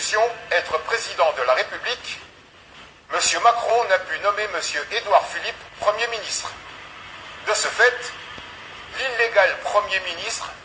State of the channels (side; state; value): both; identical; correlation 1.00